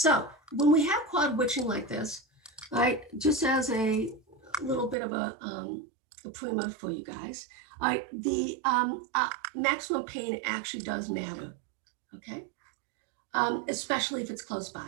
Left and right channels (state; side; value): drops out; left; at 5.0 s